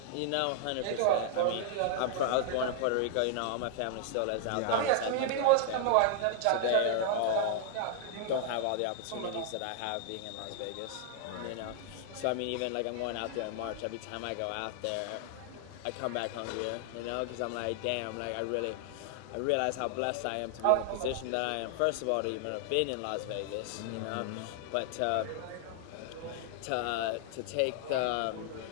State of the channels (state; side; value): different; both; correlation 0.00